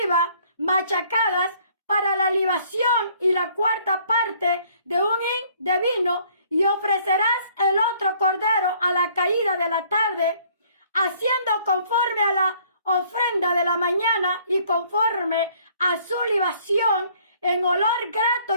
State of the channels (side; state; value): both; inverted; correlation -0.60